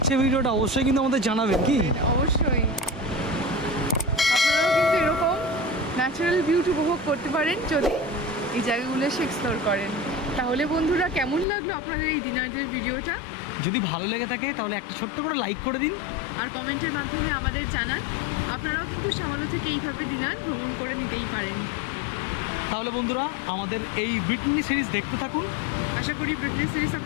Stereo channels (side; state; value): right; drops out; at 11.5 s